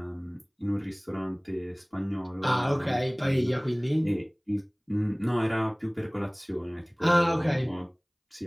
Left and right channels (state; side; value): identical; both; correlation 1.00